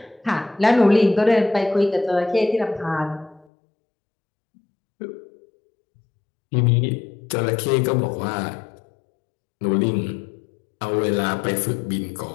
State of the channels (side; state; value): right; drops out; at 3.5 s